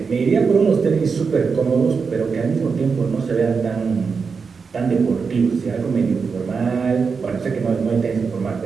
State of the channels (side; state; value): left; quieter; 5.3 dB